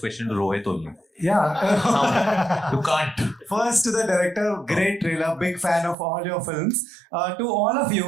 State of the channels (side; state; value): left; drops out; at 6.0 s